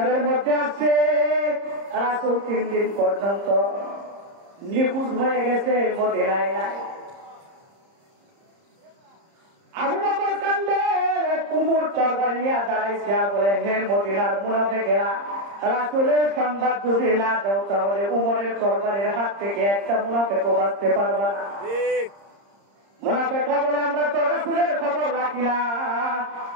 মধ্যে আছে রাসূল 3 দিন পর্যন্ত নিখোঁজ হয়ে গেছে, মদিনায় নাই। আবু বকর কান্দে, উমর তরবারি নিয়ে দাঁড়াইছে আর বলে, হে মদিনার মুনাফিকেরা, রাসূলের সংবাদ যদি না দাও তাহলে উমরের তরবারির হাত থেকে একটা মুনাফিকও বাঁচতে পারবে না। মুনাফিকরা বলে, আমরা তো রাসূলের খবর রাখি না,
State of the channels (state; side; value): late; left; 30 ms